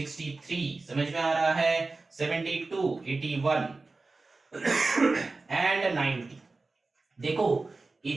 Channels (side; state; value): left; quieter; 3.6 dB